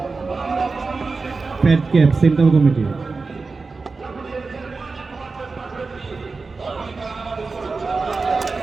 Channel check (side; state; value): left; quieter; 4.1 dB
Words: Fat cap central committee.